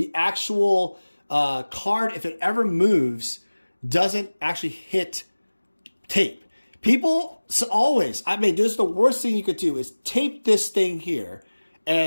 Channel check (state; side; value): inverted; both; correlation -1.00